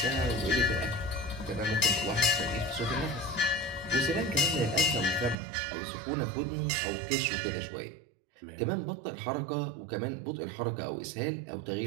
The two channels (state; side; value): drops out; left; at 5.4 s